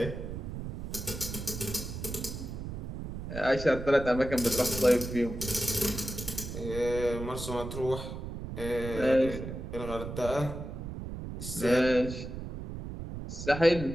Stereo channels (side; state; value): right; noise; rumble, 7 dB below the sound